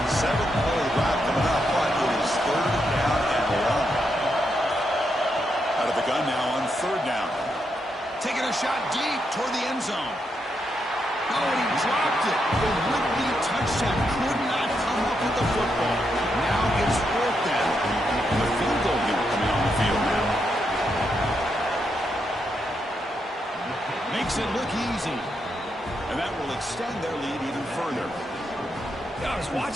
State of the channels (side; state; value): both; normal; correlation 0.81